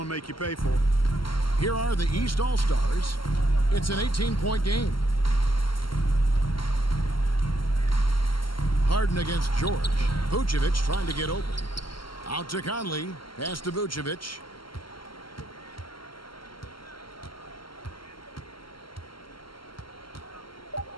to make you pay for it. Here are the East All-Stars. It's an 18-point game. Harden against George. Vucevic trying to get open. Out to Conley. Pass to Vucevic.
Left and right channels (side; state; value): right; late; 0.73 ms